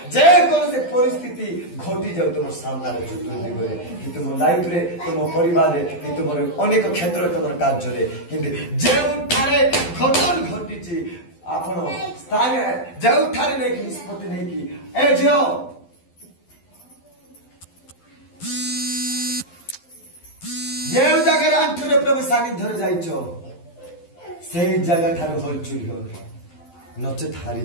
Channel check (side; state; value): right; late; 12 ms